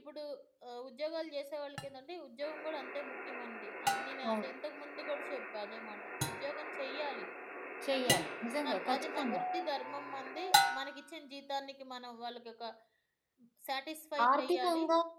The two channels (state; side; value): identical; both; correlation 1.00